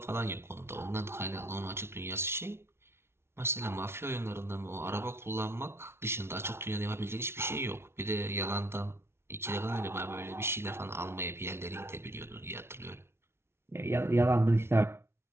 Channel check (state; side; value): late; left; 0.12 ms